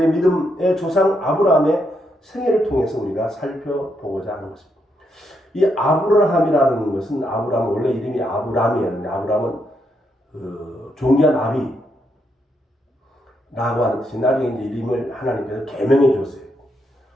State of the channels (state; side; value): normal; both; correlation 0.79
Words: 믿음의 조상 아브라함의 생애를 통해서 우리가 살펴보고자 하는 것입니다. 이 아브라함이라는 것은 아브라함은 원래 이름이 아브람이었는데 아브라함은 존귀한 아비라고 하는 뜻이 나중에 이제 이름을 하나님께서 계명해 줬어요.